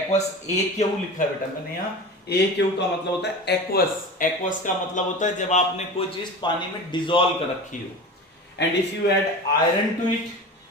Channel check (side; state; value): both; normal; correlation 0.32